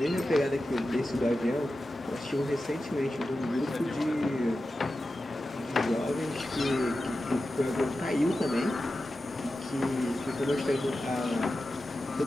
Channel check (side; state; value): both; normal; correlation 0.92